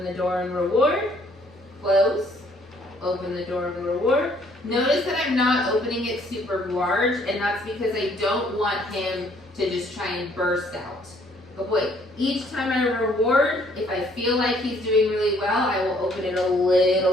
the door and reward, close, open the door and reward. Notice that I'm not opening it super large, and that's because I don't want him to just try and burst out. Good boy, each time I reward, if I feel like he's doing really well, I will open it a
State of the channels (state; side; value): normal; both; correlation 0.63